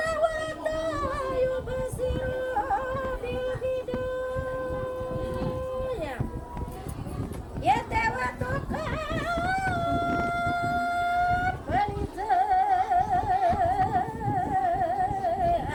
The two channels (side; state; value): both; identical; correlation 1.00